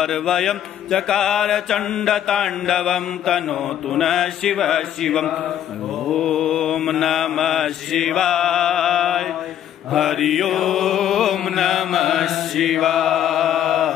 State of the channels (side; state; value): right; quieter; 10.6 dB